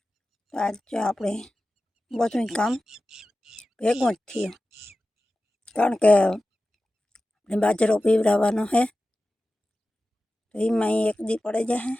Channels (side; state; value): both; normal; correlation 0.95